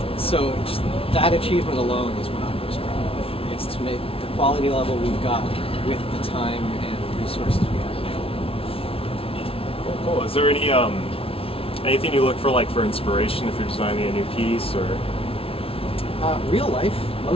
So just that achievement alone is what I'm most proud of. It's to make the quality level we've got with the time and resources we have available. Cool. Is there anything you look for inspiration if you're designing a new piece, or? Real life,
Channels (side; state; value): right; late; 0.27 ms